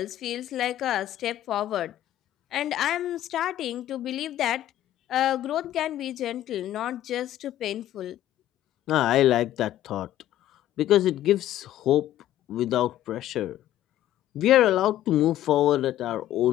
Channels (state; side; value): quieter; right; 13.0 dB